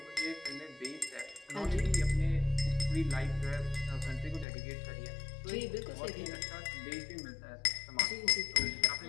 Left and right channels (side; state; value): right; drops out; at 4.5 s